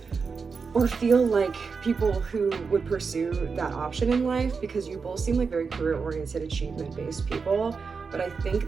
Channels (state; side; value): quieter; left; 5.2 dB